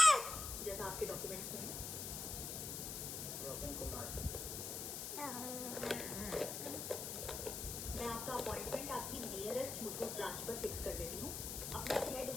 जैसा आपके डॉक्यूमेंट्स में है। रोशन कुमार। मैं आपका अपॉइंटमेंट आपकी नियरेस्ट मुथूट ब्रांच पर फिक्स कर देती हूँ। अपना 6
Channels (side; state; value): left; noise; hiss, 4 dB below the sound